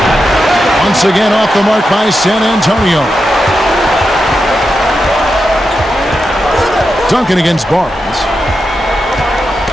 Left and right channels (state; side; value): normal; both; correlation 0.88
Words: Once again off the mark by San Antonio. Duncan against Barnes.